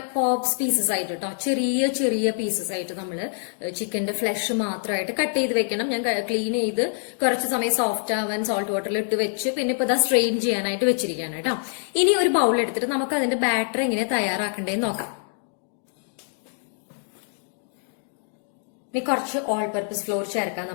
പോപ്സ് പീസസ് ആയിട്ട് കേട്ടോ, ചെറിയ ചെറിയ പീസസ് ആയിട്ട് നമ്മൾ ചിക്കന്റെ ഫ്ലഷ് മാത്രമായിട്ട് കട്ട് ചെയ്ത് വെക്കണം. ഞാൻ ക്ലീൻ ചെയ്ത് കുറച്ച് സമയം സോഫ്റ്റ് ആവാൻ സോൾട്ട് വാട്ടറിൽ ഇട്ട് വെച്ച് പിന്നെ ഇപ്പൊ ഇതാ സ്ട്രെയിൻ ചെയ്യാനായിട്ട് വെച്ചിരിക്കുകയാണ് കേട്ടോ. ഇനി ഒരു ബൗൾ എടുത്തിട്ട് നമുക്ക് അതിന്റെ ബാറ്റർ എങ്ങനെ തയ്യാറാക്കണ്ടേന്ന് നോക്കാം. ഇനി കുറച്ച് ഓൾ പർപ്പസ് ഫ്ലോർ ചേർക്കാം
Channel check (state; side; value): silent; right; 62 dB below the other